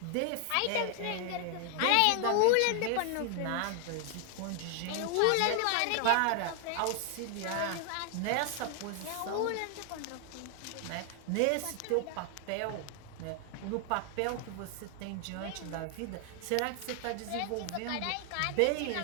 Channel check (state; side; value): different; both; correlation 0.00